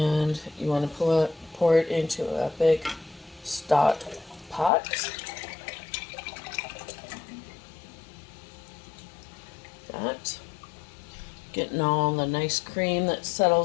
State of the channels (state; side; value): drops out; right; at 4.7 s